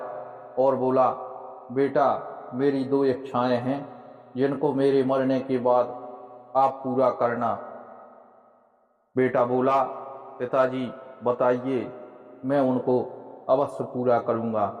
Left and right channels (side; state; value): both; identical; correlation 1.00